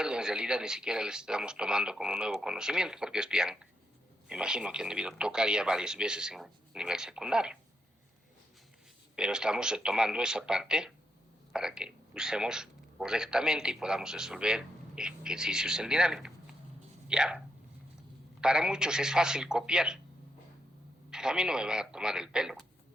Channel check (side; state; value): both; normal; correlation 0.80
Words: en realidad ni siquiera les estamos tomando como nuevo conocimiento, porque esto ya, me imagino que han debido tocar ya varias veces en nivel secundario. Pero estamos retomando esa parte para que usemos correctamente y podamos resolver ejercicios en dinámica. ¿Ya? Para muchos es fácil copiar, pero a mí no me va a tomar el pelo.